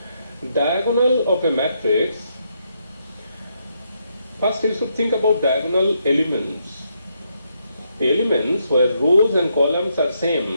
diagonal of a matrix, first you should think about diagonal elements. Elements where rows and columns are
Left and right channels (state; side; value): inverted; both; correlation -0.78